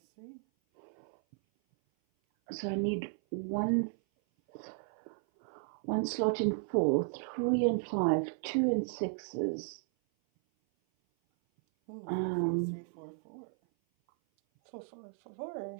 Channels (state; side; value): silent; left; 55 dB below the other